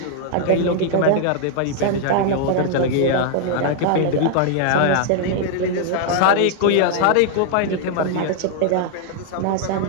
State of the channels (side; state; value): both; different; correlation -0.01